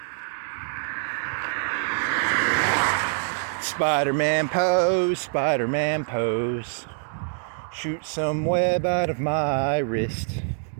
Spider-Man pose, Spider-Man pose. Shoot some web out of my wrist.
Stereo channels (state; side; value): silent; left; digital silence